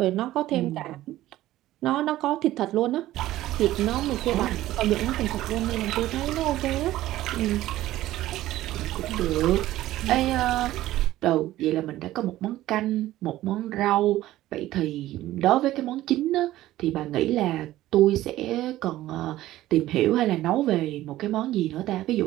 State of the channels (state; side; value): quieter; left; 15.2 dB